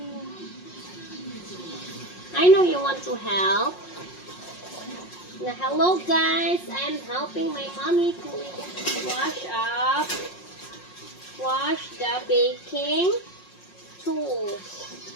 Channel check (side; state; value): right; late; 5.5 ms